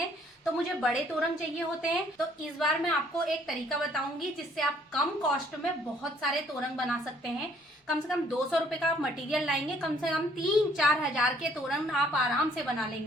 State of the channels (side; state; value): both; normal; correlation 0.62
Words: तो मुझे बड़े तोरण चाहिए होते हैं। तो इस बार मैं आपको एक तरीका बताऊंगी जिससे आप कम कॉस्ट में बहुत सारे तोरण बना सकते हैं। कम से कम 200 रुपए का आप मटेरियल लाएंगे, कम से कम 3-4 हजार के तोरण आप आराम से बना